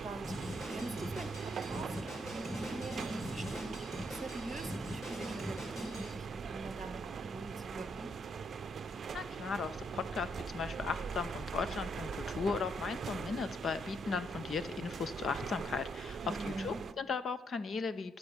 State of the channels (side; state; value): both; normal; correlation 0.75